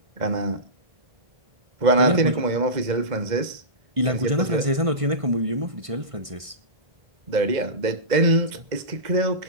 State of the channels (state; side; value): late; left; 1.5 ms